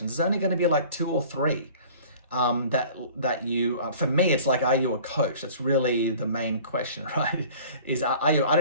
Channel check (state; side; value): inverted; both; correlation -0.47